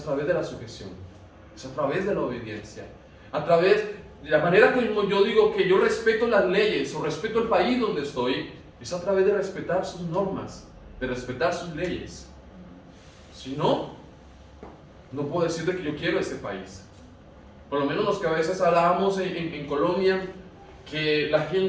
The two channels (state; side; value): identical; both; correlation 1.00